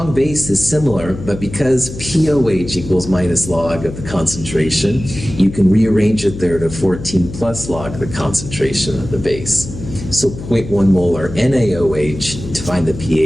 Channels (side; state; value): left; noise; hum, 11 dB below the sound